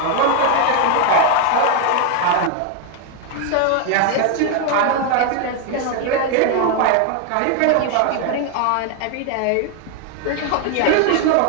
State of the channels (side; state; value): both; different; correlation 0.01